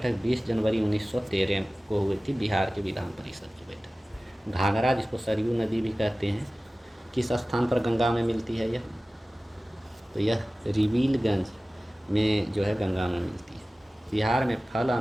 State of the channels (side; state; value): both; normal; correlation 0.97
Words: 20 जनवरी 1913 को हुई थी, बिहार के विधान परिषद की बैठक। घाघरा, जिसको सरयू नदी भी कहते हैं, किस स्थान पर गंगा में मिलती है यह? तो यह रिविलगंज में जो है गंगा में मिलती है। बिहार में फल